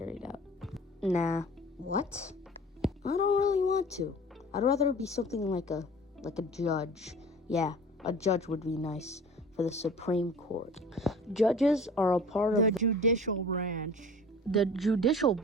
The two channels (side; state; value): both; normal; correlation 0.43